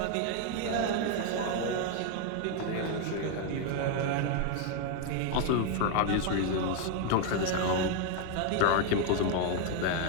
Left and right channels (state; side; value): different; both; correlation 0.00